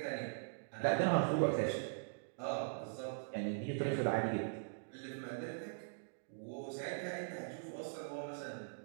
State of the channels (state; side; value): silent; left; digital silence